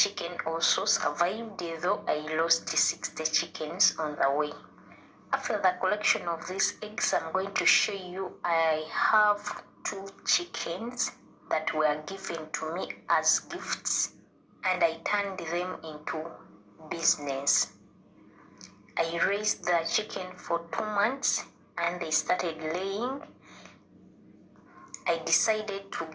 also survived, though I lost 60 chickens on the way. After the collection of these eggs, I'm going to show you I have 2 chickens that were given to me as gifts, and I turned them into business. I raised the chicken for 2 months and they started laying. I decided to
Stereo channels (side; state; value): both; identical; correlation 1.00